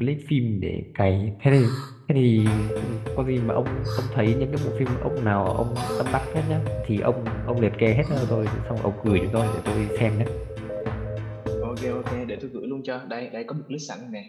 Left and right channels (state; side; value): identical; both; correlation 1.00